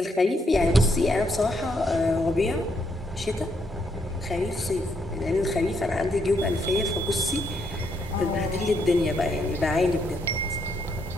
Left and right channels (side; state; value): both; normal; correlation 0.75